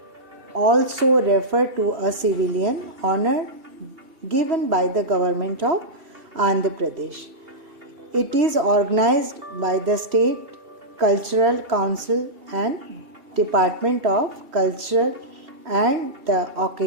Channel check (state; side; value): late; left; 2.7 ms